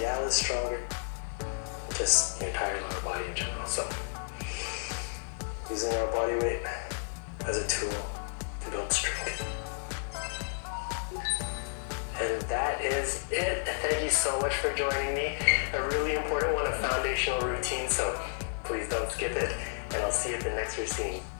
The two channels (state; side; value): silent; right; digital silence